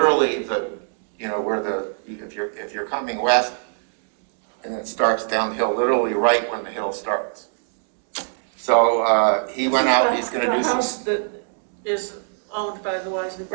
if you're coming west and it starts down the hill, literally right when the hill starts. So he went out, he's going to do some. The house that is owned by the Wisely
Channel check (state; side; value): silent; left; digital silence